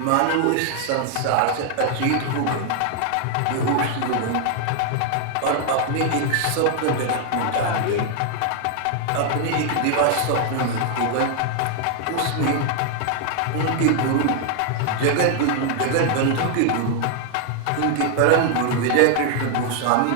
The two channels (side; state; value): both; different; correlation 0.00